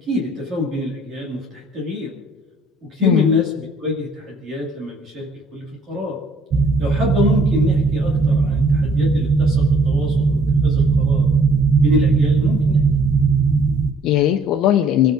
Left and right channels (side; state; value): both; normal; correlation 0.59